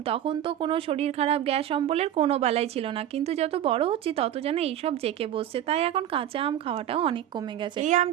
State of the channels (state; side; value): quieter; left; 11.3 dB